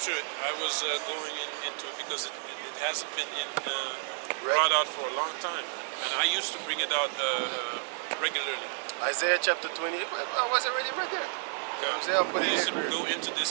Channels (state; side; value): silent; left; 57 dB below the other